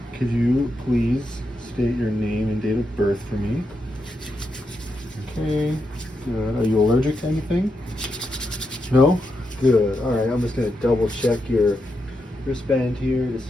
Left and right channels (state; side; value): normal; both; correlation 0.84